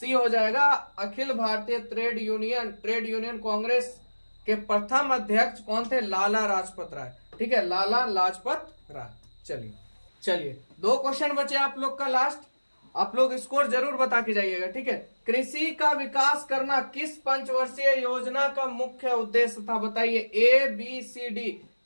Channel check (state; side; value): inverted; both; correlation -1.00